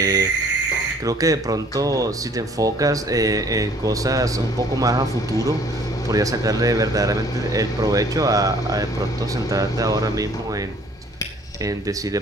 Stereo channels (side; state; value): both; normal; correlation 0.57